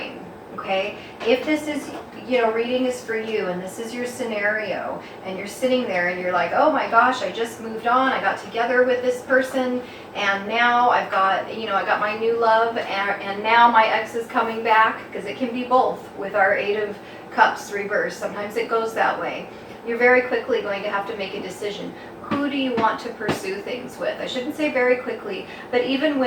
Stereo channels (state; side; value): identical; both; correlation 1.00